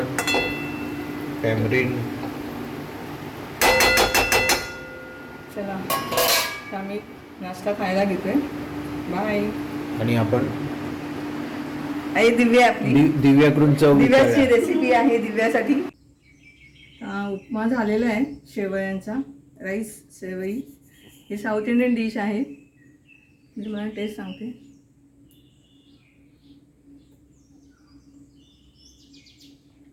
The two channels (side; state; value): both; identical; correlation 1.00